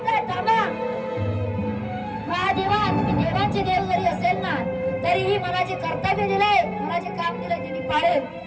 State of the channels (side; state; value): both; identical; correlation 1.00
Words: थांबा महादेवा, तुम्ही देवांचे देव जरी असेल ना तरीही मला जे कर्तव्य दिलंय, मला जे काम दिलंय ते मी पाळेल.